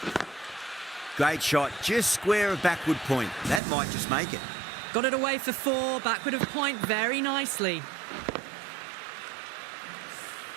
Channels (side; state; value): left; drops out; at 3.6 s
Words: Great shot, just square of backward point. That might just make it. Got it away for 4, backward of point very nicely.